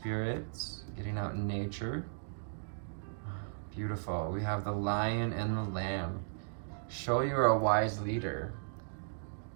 getting out in nature. Beautiful. We have the lion and the lamb. Show you are a wise leader.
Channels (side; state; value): left; silent; digital silence